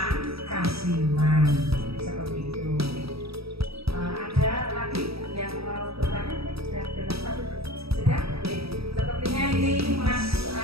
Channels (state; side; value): late; left; 0.77 ms